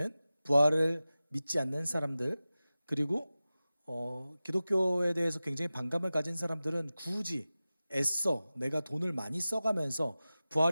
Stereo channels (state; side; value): inverted; both; correlation -0.96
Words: 부활을 믿지 않는 사람들, 그리고 기독교에 대해서 굉장히 반감을 가진 사람들은 굳이 애써 내가 돈을 많이 써가면서